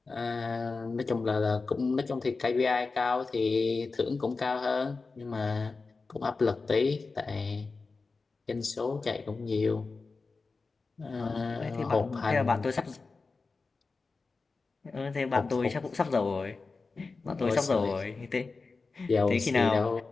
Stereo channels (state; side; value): quieter; right; 4.1 dB